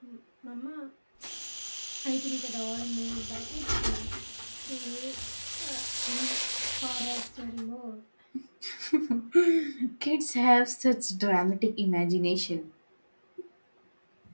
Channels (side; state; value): both; inverted; correlation -1.00